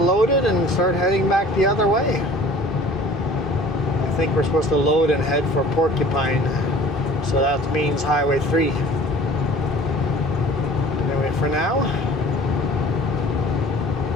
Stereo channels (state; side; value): normal; both; correlation 0.46